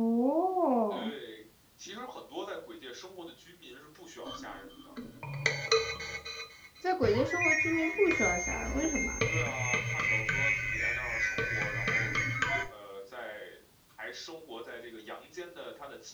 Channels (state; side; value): identical; both; correlation 1.00